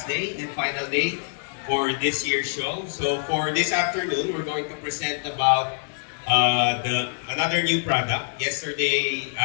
day and final day for this year's show. So for this afternoon, we're going to present about the another new product. Yesterday,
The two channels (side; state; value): right; silent; 62 dB below the other